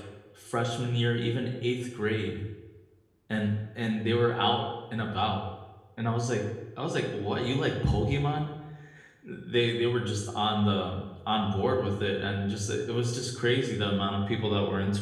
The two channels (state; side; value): identical; both; correlation 1.00